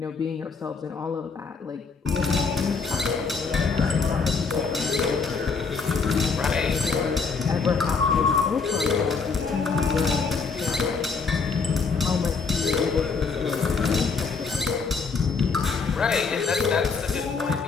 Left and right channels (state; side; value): quieter; right; 5.0 dB